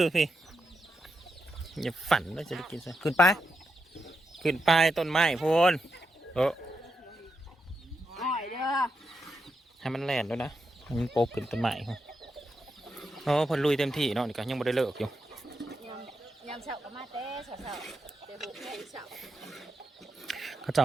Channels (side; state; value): both; normal; correlation 0.85